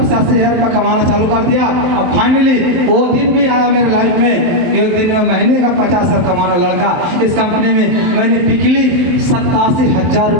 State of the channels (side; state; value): left; late; 23 ms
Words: से 80 हज़ार रुपये कमाना चालू कर दिया। और फाइनली वो दिन भी आया मेरे लाइफ में, एक दिन में महीने का 50 हज़ार कमाना लड़का। इस कंपनी में मैंने पिछली 87,000